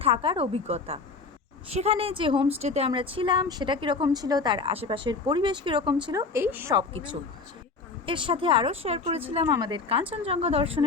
থাকার অভিজ্ঞতা। সেখানে যে হোমস্টেতে আমরা ছিলাম সেটা কীরকম ছিল, তার আশেপাশের পরিবেশ কীরকম ছিল, এই সব কিছু। এর সাথে আরও শেয়ার করেছিলাম আমাদের কাঞ্চনজঙ্ঘা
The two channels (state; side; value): quieter; right; 4.3 dB